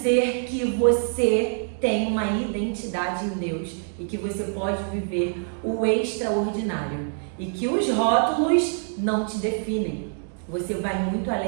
que você tem uma identidade em Deus e que você pode viver o extraordinário. E que os rótulos não te definem. Você vai muito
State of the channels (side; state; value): left; silent; digital silence